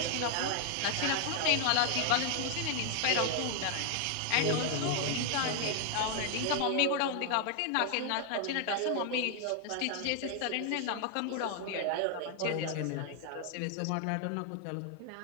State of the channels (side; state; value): both; different; correlation 0.00